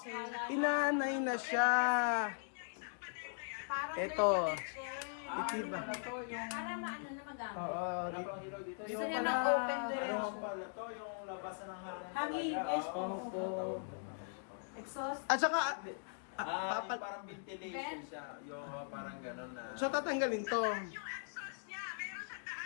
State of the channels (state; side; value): silent; right; digital silence